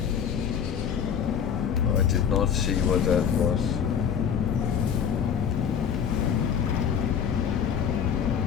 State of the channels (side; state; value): right; quieter; 7.8 dB